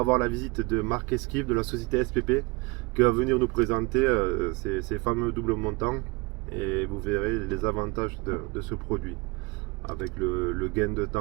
voir la visite de Marc Esquive de la société SPP qui va venir nous présenter ces fameux doubles montants et vous verrez les avantages de ce produit avec le gain de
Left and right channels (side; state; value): left; quieter; 26.6 dB